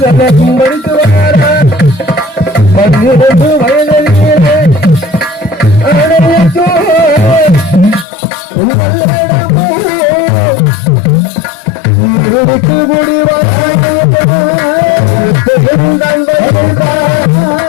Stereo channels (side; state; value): right; drops out; at 8.1 s